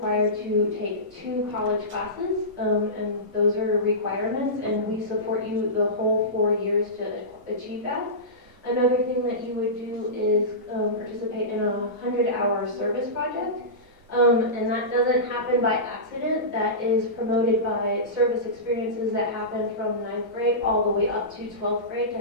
to take 2 college classes, and those are requirements, and we support you the whole 4 years to achieve that. Another thing that you would do is participate in a 100-hour service project, and that doesn't happen by accident. That is promoted by service experiences that happen from 9th grade all the way up to 12th grade to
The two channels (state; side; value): normal; both; correlation -0.19